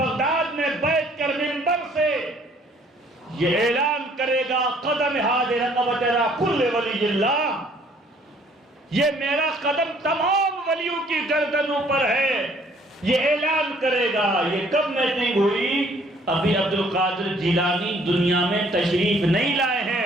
میں بیٹھ کر منبر سے یہ اعلان کرے گا قدم حاضر رقبت را کل ولی اللہ، یہ میرا قدم تمام ولیوں کی گردنوں پر ہے. یہ اعلان کرے گا. یہ کب میٹنگ ہوئی؟ ابھی عبد القادر جیلانی دنیا میں تشریف نہیں لائے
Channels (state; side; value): normal; both; correlation 0.60